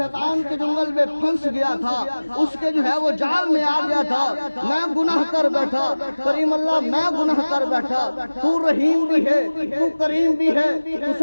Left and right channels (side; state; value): both; inverted; correlation -1.00